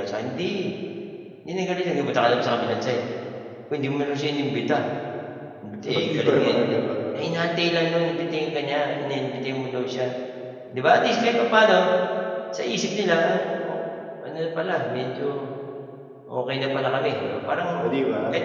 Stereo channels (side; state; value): both; identical; correlation 1.00